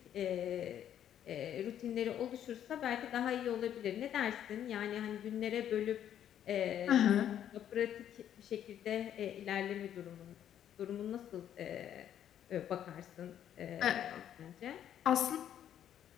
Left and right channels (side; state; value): right; quieter; 10.3 dB